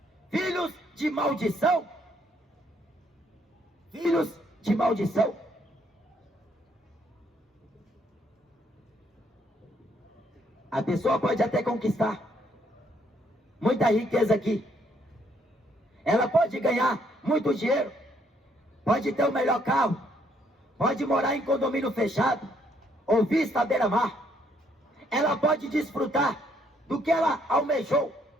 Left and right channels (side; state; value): both; normal; correlation 0.69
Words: filhos de maldição, filhos de maldição. A pessoa pode até conquistar muita riqueza aqui, ela pode ganhar muito dinheiro, pode ter o melhor carro, pode morar em condomínio fechado ou vista à beira-mar. Ela pode desfrutar do que ela almejou,